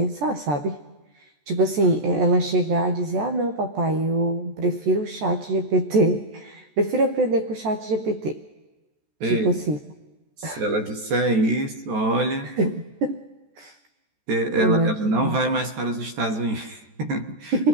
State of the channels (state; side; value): late; left; 14 ms